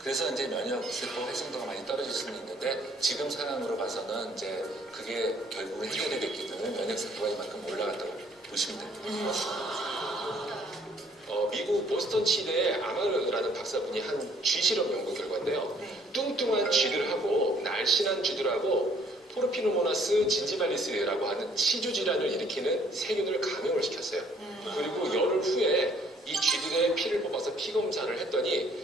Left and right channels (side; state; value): both; normal; correlation 0.62